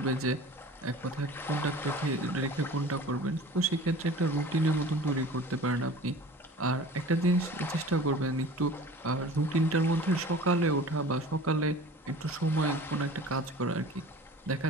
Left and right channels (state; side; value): normal; both; correlation 0.41